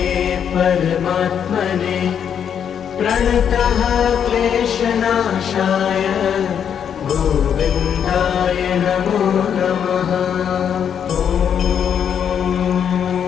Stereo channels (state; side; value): quieter; right; 8.2 dB